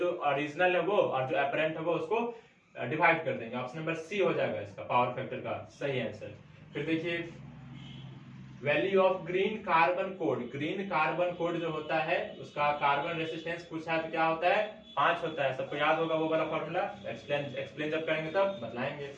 ओरिजिनल है वो और जो एपरेंट है वो उसको डिवाइड कर देंगे। ऑप्शन नंबर सी हो जाएगा इसका पावर फैक्टर का सही आंसर। फिर देखिए value of green carbon code जो होता है उसका कार्बन रेसिस्टेंस पूछा है तो क्या होता है? 5 होता है। सबको याद होगा वो वाला फॉर्मूला, एक्सप्लेन जब करेंगे तब बतलाएंगे।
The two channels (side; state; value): both; identical; correlation 1.00